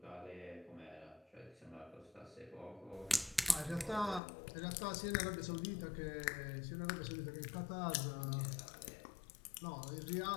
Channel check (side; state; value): right; drops out; at 4.2 s